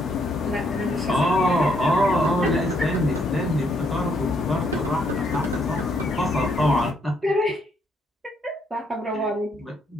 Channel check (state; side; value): normal; both; correlation 0.72